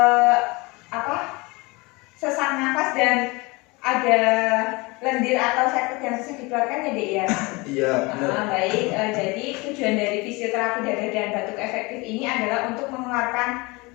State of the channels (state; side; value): quieter; right; 25.2 dB